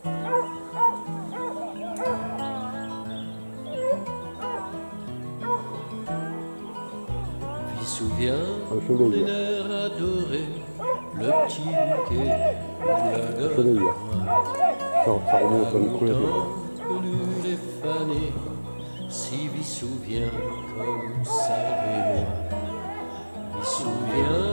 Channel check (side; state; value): both; inverted; correlation -1.00